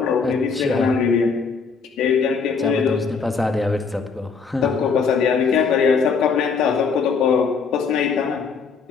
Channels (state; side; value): quieter; right; 5.4 dB